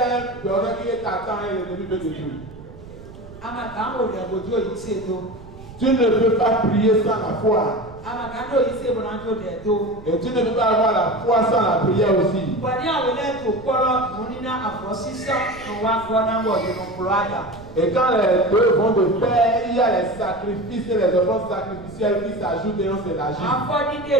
un beurre qui est t'attend et l'ennemi veut détruire. Àmàkà ń wò dàgbòjú òyìn sí ètò. Tu ne peux pas prier sans la foi. Àmàkà ń òyìn sí èbò náà tó dẹ̀ tó. Et tu ne peux pas avoir la foi sans la prière aussi. Bọ̀dé àwọn ẹlẹ́tò kọ́rọ́ mo ní ná àfọ̀sísọ́ ìwà gbọ́náwọ̀ nínú kúrò àjà. Et quand les deux vont de pair, il y a les sacrifices et les offrandes sacrificielles qui s'ajoutent et on s'élargit. Àfọ̀dídé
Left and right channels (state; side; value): noise; right; rumble, 17 dB below the sound